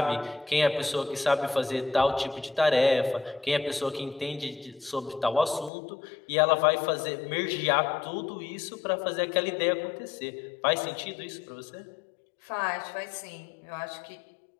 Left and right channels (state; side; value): drops out; right; at 5.7 s